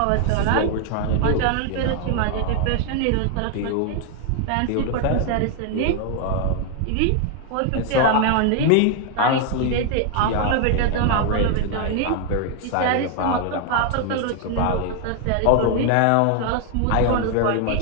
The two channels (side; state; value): both; different; correlation 0.00